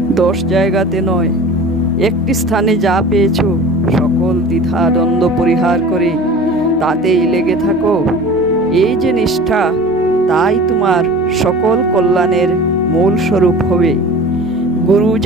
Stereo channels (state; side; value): normal; both; correlation 0.39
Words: 10 জায়গাতে নয়, একটি স্থানে যা পেয়েছ সকল দ্বিধা দ্বন্দ্ব পরিহার করে তাতেই লেগে থাকো। এই যে নিষ্ঠা, তাই তোমার সকল কল্যাণের মূল স্বরূপ হবে। গুরু